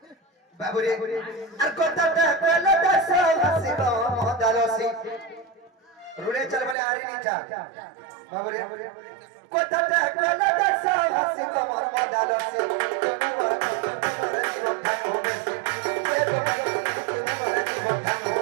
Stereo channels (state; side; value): drops out; left; at 6.8 s